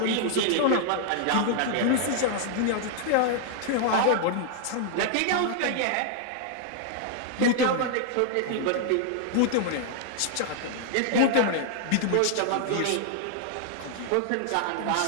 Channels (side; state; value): both; different; correlation 0.00